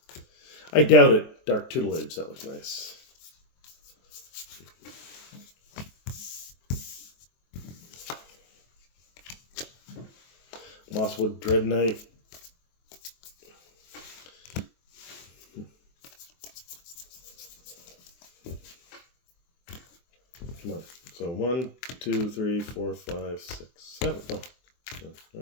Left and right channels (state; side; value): late; right; 23 ms